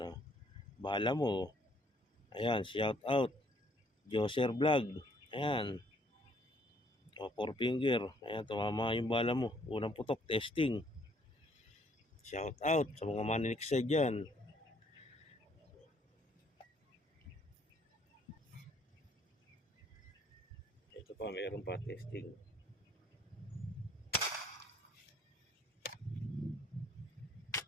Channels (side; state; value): both; normal; correlation 0.64